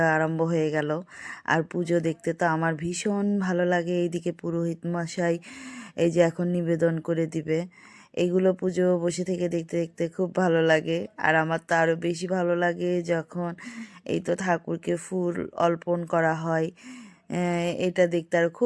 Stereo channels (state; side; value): identical; both; correlation 1.00